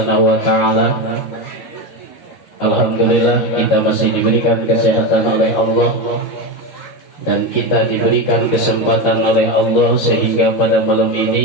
wa taala. Alhamdulillah kita masih diberikan kesehatan oleh Allah, dan kita diberikan kesempatan oleh Allah sehingga pada malam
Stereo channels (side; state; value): right; late; 13 ms